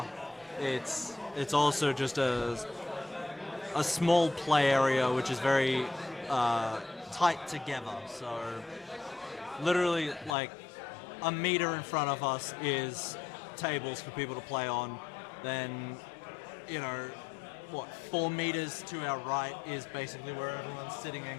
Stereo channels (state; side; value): drops out; right; at 10.4 s